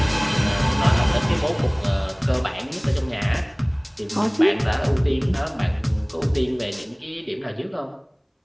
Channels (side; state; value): both; identical; correlation 1.00